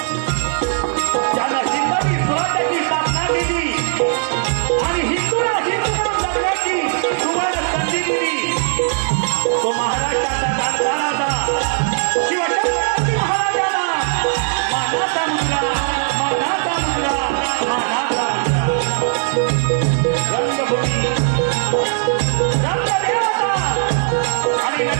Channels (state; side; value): silent; left; 67 dB below the other